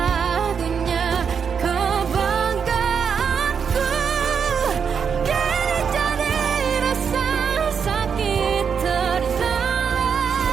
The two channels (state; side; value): quieter; left; 6.7 dB